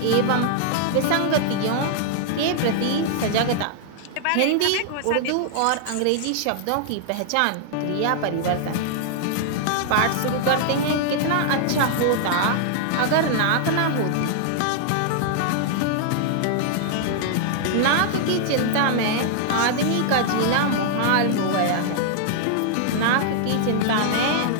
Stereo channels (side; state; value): both; different; correlation -0.01